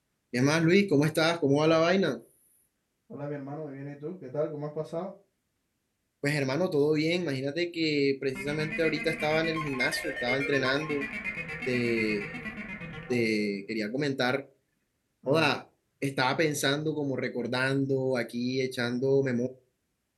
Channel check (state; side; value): identical; both; correlation 1.00